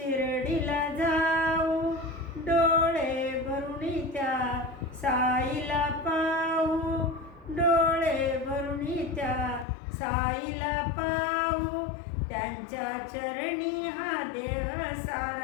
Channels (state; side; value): drops out; right; at 9.7 s